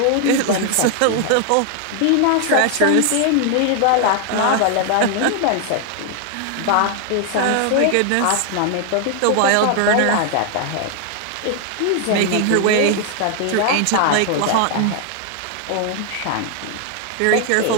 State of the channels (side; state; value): both; different; correlation 0.00